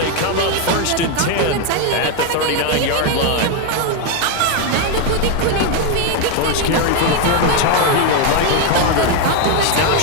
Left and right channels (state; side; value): different; both; correlation 0.01